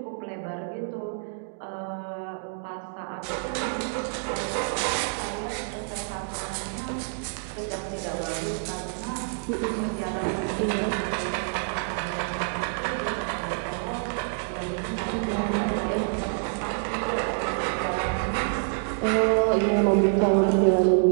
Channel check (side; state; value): left; silent; digital silence